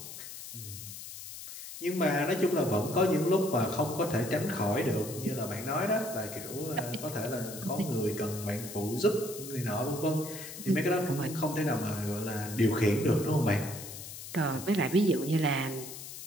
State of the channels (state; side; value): noise; left; hiss, 11 dB below the sound